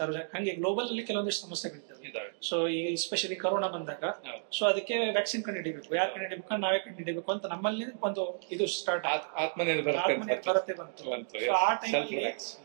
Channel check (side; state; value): left; silent; digital silence